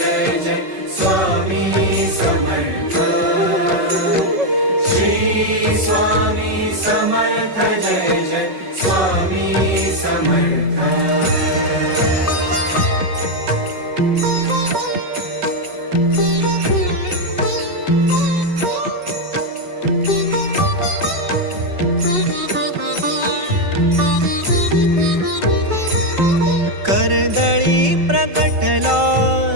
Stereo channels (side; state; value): left; late; 5.4 ms